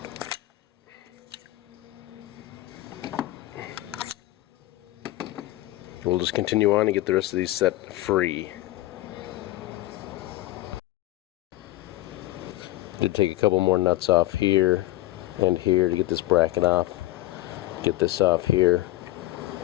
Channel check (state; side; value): quieter; right; 16.8 dB